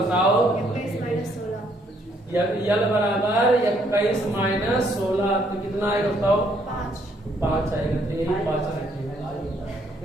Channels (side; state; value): both; normal; correlation 0.69